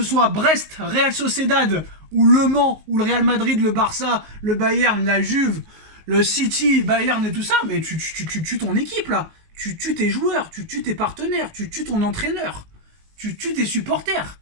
soit Brest, Real Sociedad, ou Le Mans, ou le Real Madrid, le Barça, le Bayern, la Juve, le City, Bayern et tout ça, mais tu tues ton équipe là. Tu tues tes joueurs, tu tues tes partenaires, tu tues ton entraîneur, tu tues tes supporters.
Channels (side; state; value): left; late; 19 ms